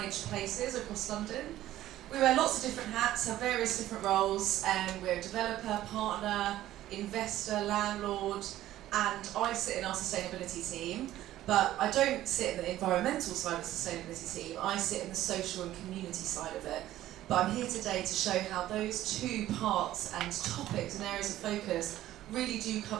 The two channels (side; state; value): left; quieter; 14.0 dB